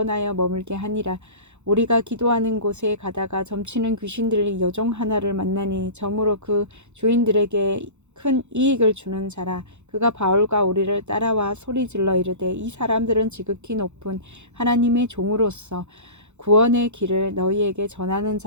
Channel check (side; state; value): left; late; 0.83 ms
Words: 머물게 하니라. 우리가 기도하는 곳에 가다가 점치는 귀신들이 여종 하나를 만나니 점으로 그 주인들에게 큰 이익을 주는 자라. 그가 바울과 우리를 따라와 소리질러 이르되 이 사람들은 지극히 높은 하나님의 종으로서 구원의 길을 너희에게 전하는